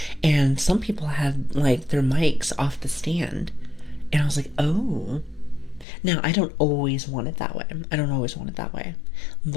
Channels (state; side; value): drops out; right; at 5.9 s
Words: and some people had like their mics off the stand, and I was like, oh. Now, I don't always want it that way. I don't always want it that way,